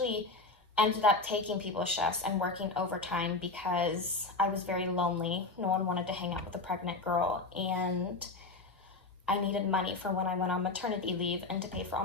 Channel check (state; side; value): quieter; right; 3.5 dB